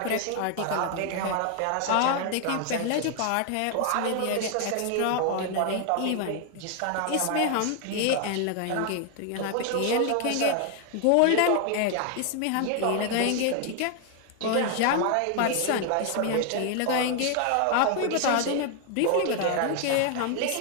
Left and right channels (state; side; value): different; both; correlation 0.00